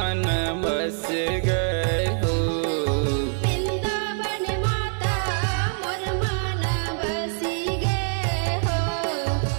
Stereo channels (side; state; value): left; silent; 60 dB below the other